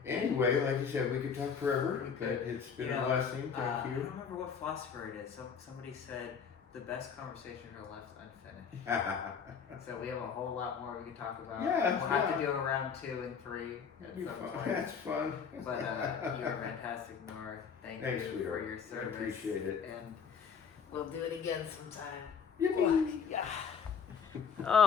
Anyway, like you said, we could talk forever, We but could. it's been You a know, blessing. Thank I you. don't remember what philosopher it is. Somebody said the best conversations are left unfinished. So we have a whole lot more we can talk about. Yeah, we'll have yeah. to do a round 2 and 3 That'd at be some fun. point. That's fun. But you're fantastic, Nor. Thank Thanks, you sweetheart. for your service. I appreciate it. And we'll do it again sometime. Yippee. Yeah.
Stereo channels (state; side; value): quieter; right; 6.6 dB